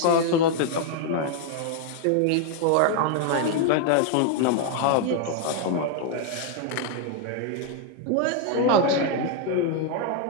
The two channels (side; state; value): both; different; correlation 0.00